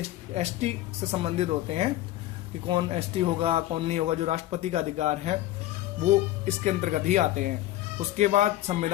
ST से संबंधित होते हैं कि कौन ST होगा कौन नहीं होगा, जो राष्ट्रपति का अधिकार है वो इसके अंतर्गत ही आते हैं। उसके बाद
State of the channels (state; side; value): quieter; right; 14.7 dB